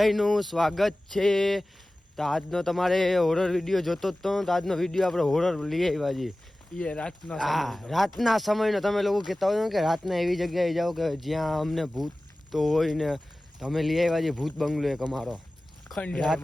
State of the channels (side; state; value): both; normal; correlation 0.97